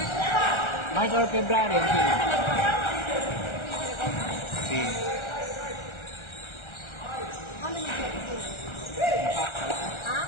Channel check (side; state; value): right; late; 1.4 ms